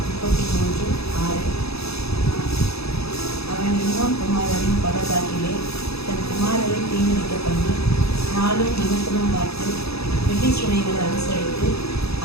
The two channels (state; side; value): late; right; 0.78 ms